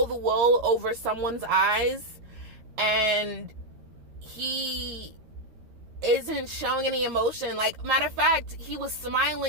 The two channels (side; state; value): left; late; 13 ms